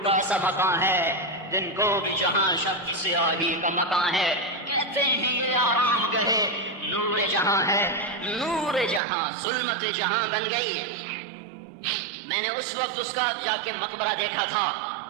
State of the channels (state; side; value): drops out; left; at 9.0 s